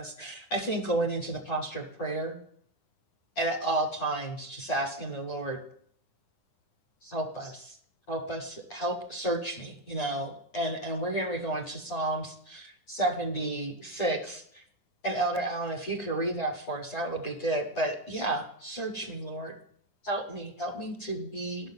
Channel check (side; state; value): right; late; 9.9 ms